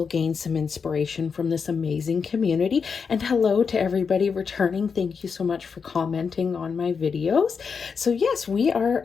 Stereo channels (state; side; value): quieter; right; 5.8 dB